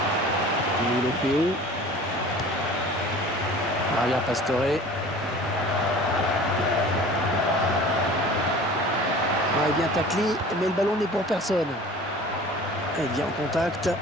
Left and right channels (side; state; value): both; normal; correlation 0.43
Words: Il est fait où? Maria Pastore. Il est bien taclé, mais le ballon n'est pour personne. Il vient en contact.